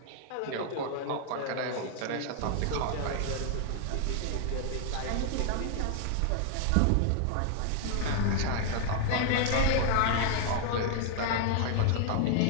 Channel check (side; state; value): both; different; correlation 0.00